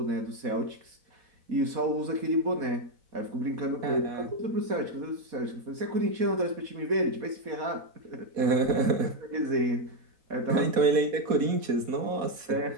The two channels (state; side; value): late; left; 4.2 ms